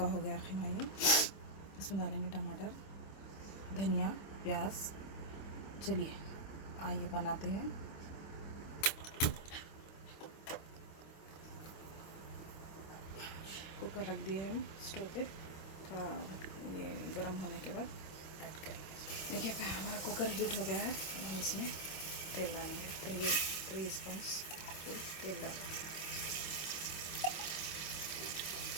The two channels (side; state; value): right; late; 25 ms